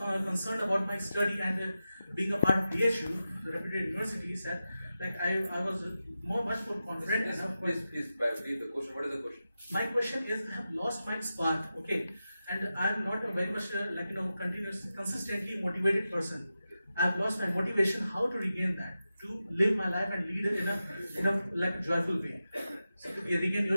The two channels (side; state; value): both; inverted; correlation -0.92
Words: about my study and being a part of BHU, the reputed university, said like I was much more confident. Please, read the question. What is the question? My question is, I have lost my spark, okay, and I am not a very much consistently motivated person. I have lost my motivation. How to regain that? To live my life and lead it in a joyful way. So to regain